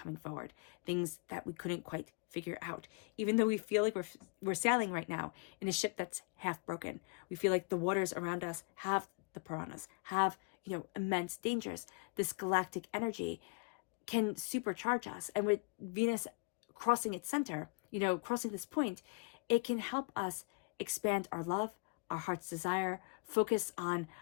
forward. Things that we couldn't quite figure out. Even though we feel like we're sailing right now in a ship that's half broken. We feel like the waters around us have the piranhas, have, immense dangers. This galactic energy can supercharge us. And with Venus crossing its center, crossing this point, it can help us expand our love, our heart's desire, focus on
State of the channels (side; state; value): right; quieter; 30.5 dB